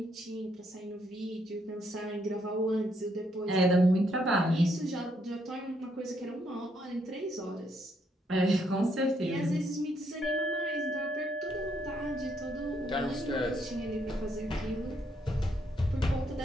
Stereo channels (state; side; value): normal; both; correlation 0.74